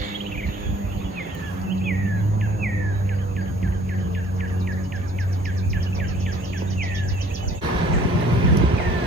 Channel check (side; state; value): both; normal; correlation 0.55